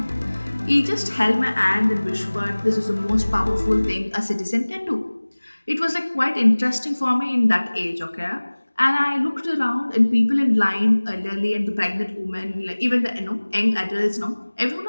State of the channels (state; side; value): inverted; both; correlation -1.00